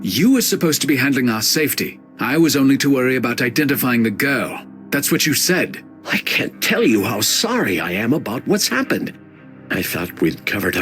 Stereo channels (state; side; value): identical; both; correlation 1.00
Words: You were supposed to be handling our safety. I was only to worry about identifying the girl. That's what you said. I can't tell you how sorry I am about what's happened. I thought we'd covered